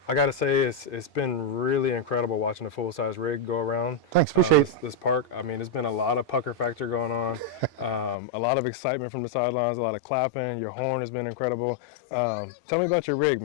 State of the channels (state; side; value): drops out; right; at 8.2 s